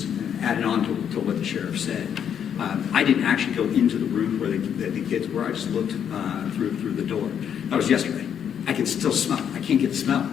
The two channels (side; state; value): right; quieter; 8.5 dB